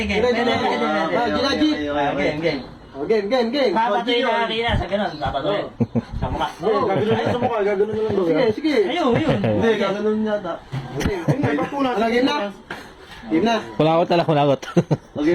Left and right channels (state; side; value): identical; both; correlation 1.00